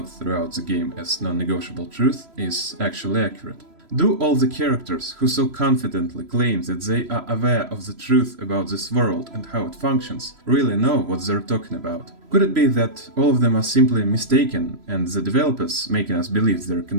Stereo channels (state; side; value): late; left; 3.0 ms